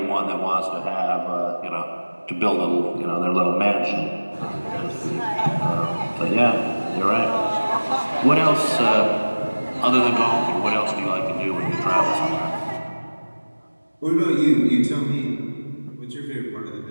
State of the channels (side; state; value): both; inverted; correlation -1.00